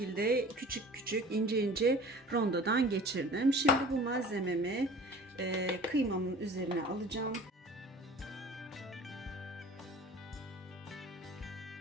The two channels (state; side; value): normal; both; correlation 0.43